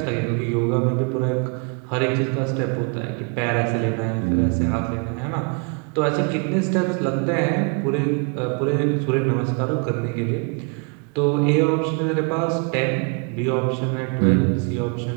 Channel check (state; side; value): quieter; left; 35.6 dB